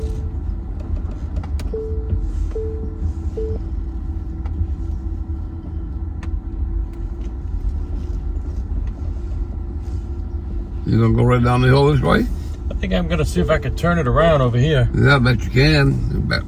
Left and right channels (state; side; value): identical; both; correlation 1.00